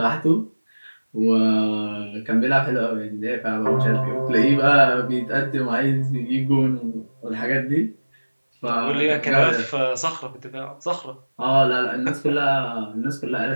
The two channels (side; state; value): both; inverted; correlation -1.00